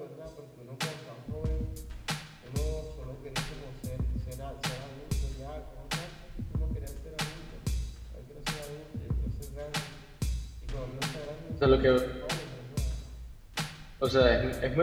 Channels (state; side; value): identical; both; correlation 1.00